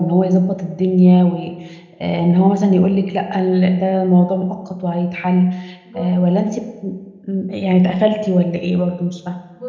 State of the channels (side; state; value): both; identical; correlation 1.00